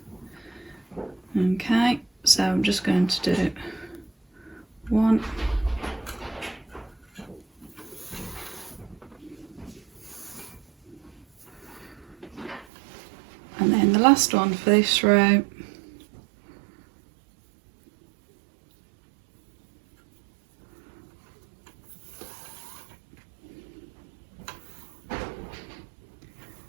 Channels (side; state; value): left; drops out; at 12.7 s